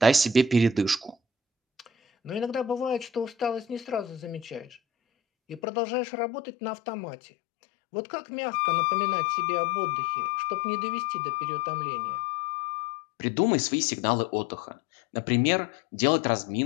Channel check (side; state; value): right; drops out; at 5.6 s